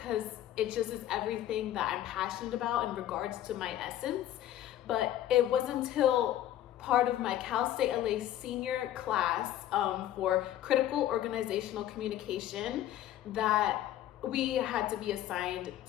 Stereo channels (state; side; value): quieter; right; 12.4 dB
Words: it just is everything that I'm passionate about in regards to my essence, but it wasn't until part of my Cal State LA senior class for critical organizational communication that we had to be assigned